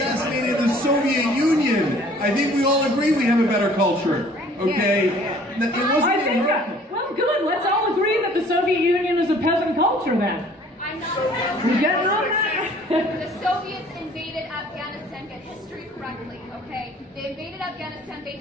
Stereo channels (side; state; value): both; normal; correlation 0.54